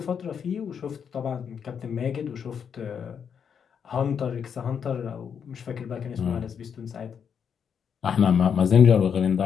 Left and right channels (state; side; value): quieter; right; 7.3 dB